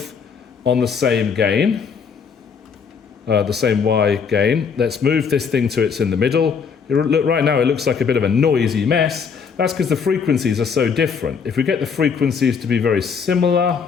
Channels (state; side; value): quieter; right; 6.1 dB